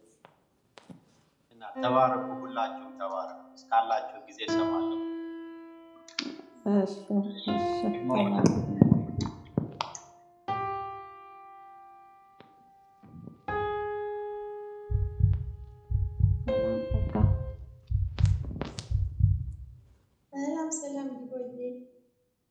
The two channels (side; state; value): both; identical; correlation 1.00